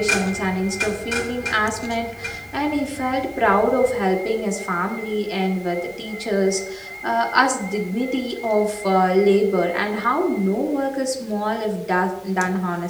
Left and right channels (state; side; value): identical; both; correlation 1.00